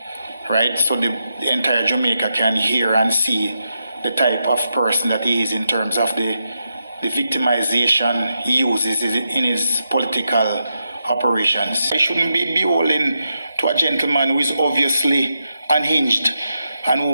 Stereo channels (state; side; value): inverted; both; correlation -0.85